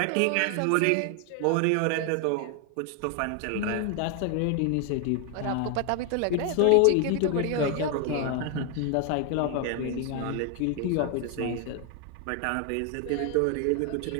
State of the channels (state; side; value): different; both; correlation 0.01